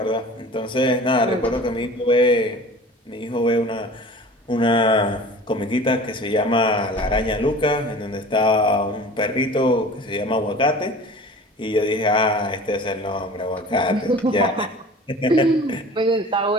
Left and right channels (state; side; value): normal; both; correlation 0.41